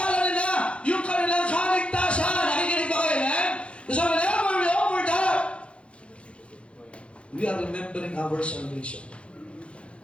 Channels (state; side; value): late; right; 0.060 ms